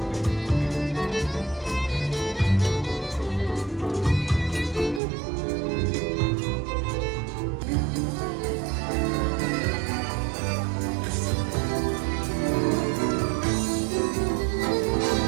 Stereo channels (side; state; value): left; drops out; at 5.0 s